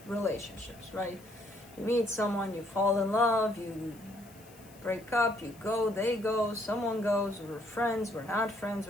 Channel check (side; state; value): left; noise; hiss, 24 dB below the sound